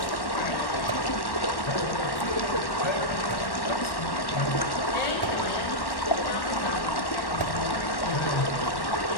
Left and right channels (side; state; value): right; late; 1.1 ms